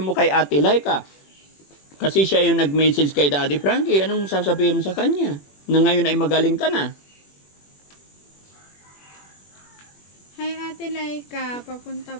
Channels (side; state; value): right; late; 21 ms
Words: kay Ate Laika? Kasi siya yung nag-message kay Daddy Frankie. Anong sasabihin mo sa kanya? Na ngayon ay magaling ka na. Hi Ate Laika, papunta